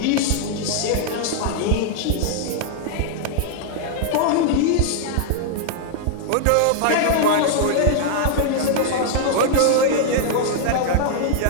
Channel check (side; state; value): both; different; correlation -0.01